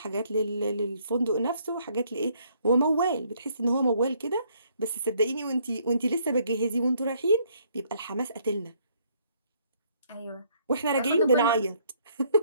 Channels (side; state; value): both; inverted; correlation -0.67